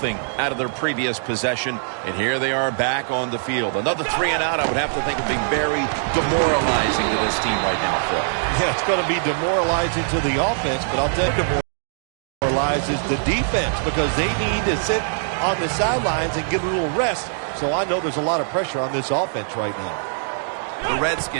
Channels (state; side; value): silent; left; digital silence